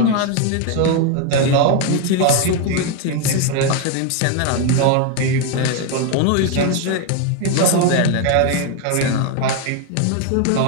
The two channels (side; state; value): both; different; correlation 0.01